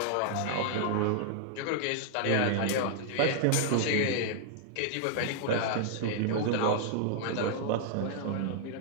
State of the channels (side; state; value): both; different; correlation -0.01